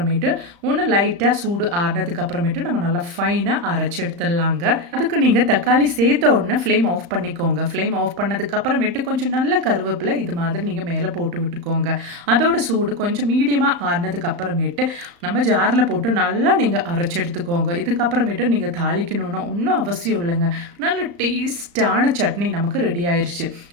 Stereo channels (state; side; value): late; left; 35 ms